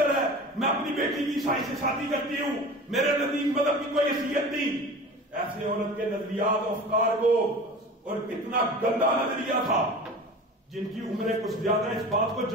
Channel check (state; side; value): normal; both; correlation 0.37